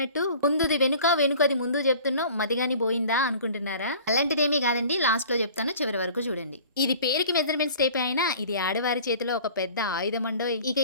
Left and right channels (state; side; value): inverted; both; correlation -0.46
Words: ముందుది వెనుక వెనుకది ముందు చెప్తున్నావు మదిగాని పోయిందా అనుకుంటున్నారా? అలాంటిదేమీ కాదండి, లాస్ట్ లో చెప్తాను, చివరి వరకు చూడండి. ఇది పేరుకి మెజర్మెంట్స్ టేప్ అయినా ఇది ఆడవారి చేతిలో ఒక పెద్ద ఆయుధం అండో. ఇక